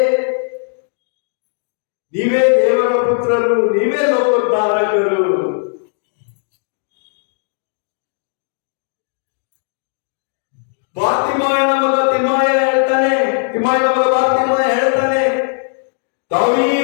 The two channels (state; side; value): silent; right; 68 dB below the other